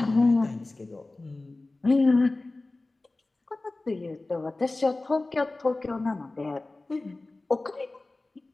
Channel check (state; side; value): quieter; right; 3.1 dB